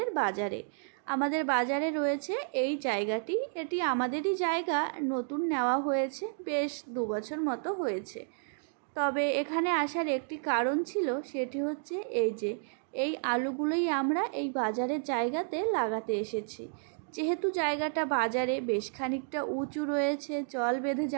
বাজারে। আমাদের বাজারে রয়েছে এই জায়গাটি। এটি আমাদেরই জায়গা, নতুন নেওয়া হয়েছে, বেশ 2 বছর মতো হয়েছে। তবে এখানে আসার একটি কারণ ছিল, সেটি হচ্ছে এই আলুগুলোই আমরা এই বাজারের জায়গাতে লাগাতে এসেছি। যেহেতু জায়গাটা বাজারে বেশ খানিকটা উঁচু রয়েছে, জল বেঁধে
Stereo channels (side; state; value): left; silent; digital silence